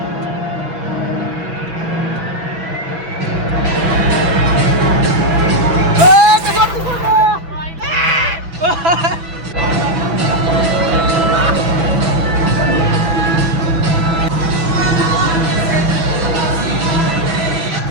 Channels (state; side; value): late; left; 6.0 ms